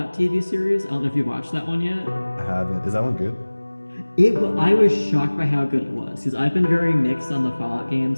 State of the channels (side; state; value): both; inverted; correlation -1.00